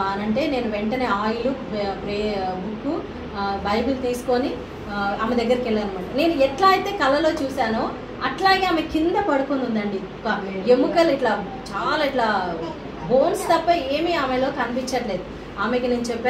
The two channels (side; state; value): both; identical; correlation 1.00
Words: అని అంటే, నేను వెంటనే ఆయిల్, బుక్, బైబిల్ తీసుకొని ఆమె దగ్గరికి వెళ్ళాను అనమాట. నేను ఎట్లా అయితే కళలో చూశానో అట్లాగే ఆమె కింద పడుకొని ఉందండి. ఒక ఎముకలు ఇట్లా చాలా ఇట్లా బోన్స్ తప్ప ఏమీ ఆమెలో కనిపించట్లేదు. ఆమెకి నేను